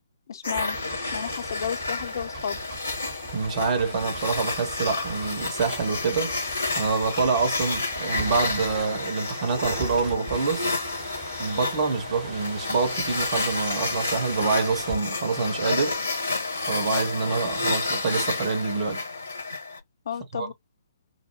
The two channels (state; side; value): inverted; both; correlation -0.67